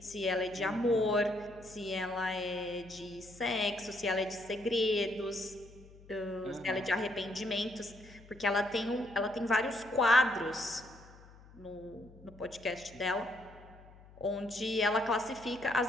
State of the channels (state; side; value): noise; left; hum, 22 dB below the sound